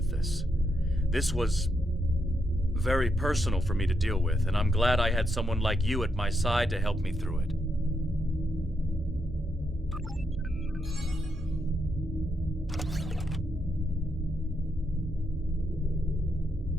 this. This was very personal for me to deal with, and I'm glad I had someone like you at my side to help me through it.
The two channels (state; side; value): normal; both; correlation 0.81